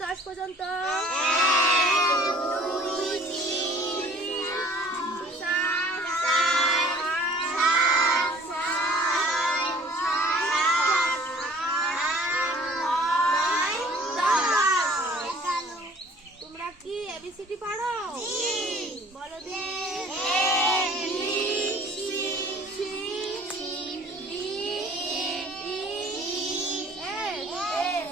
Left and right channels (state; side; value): normal; both; correlation 0.52